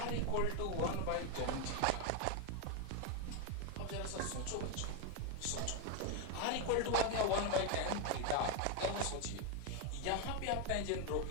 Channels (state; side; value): different; both; correlation 0.01